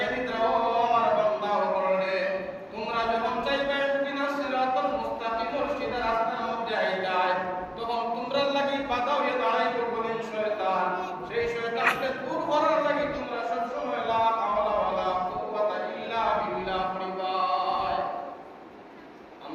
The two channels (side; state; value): both; identical; correlation 1.00